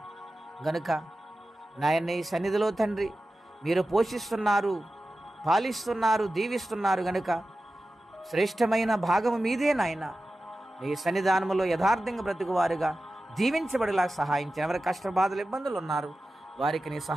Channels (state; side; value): normal; both; correlation 0.94